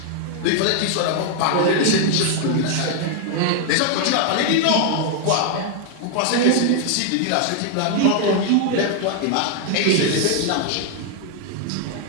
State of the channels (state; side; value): different; both; correlation 0.00